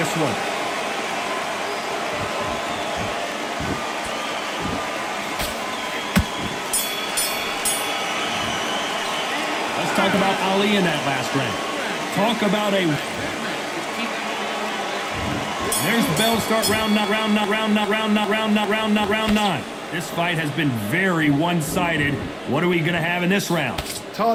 one. Let's talk about Ali in that last round. Talk about a... There's the bell to start round 9. This fight has been very one-sided. What are we going to have in this round?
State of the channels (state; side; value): identical; both; correlation 1.00